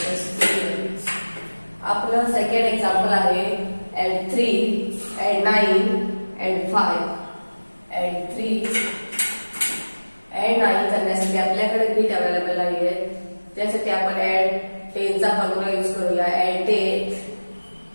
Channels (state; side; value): inverted; both; correlation -1.00